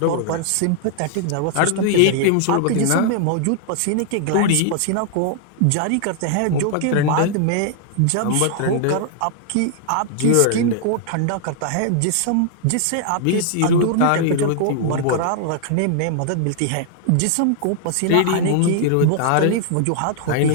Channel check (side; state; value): both; different; correlation -0.01